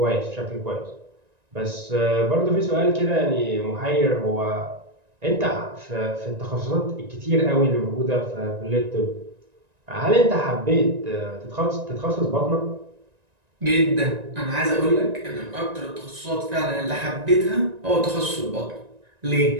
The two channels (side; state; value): left; late; 1.9 ms